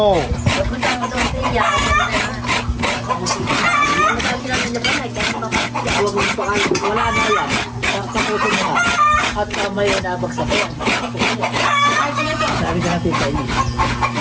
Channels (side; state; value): both; identical; correlation 1.00